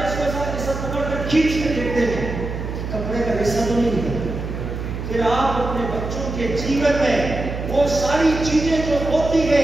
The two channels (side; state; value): right; noise; hum, 6 dB below the sound